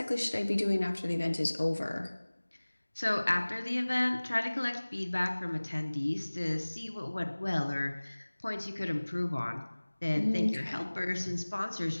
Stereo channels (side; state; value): both; inverted; correlation -1.00